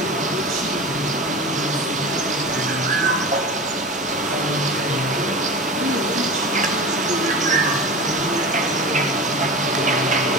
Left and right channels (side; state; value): both; normal; correlation 0.30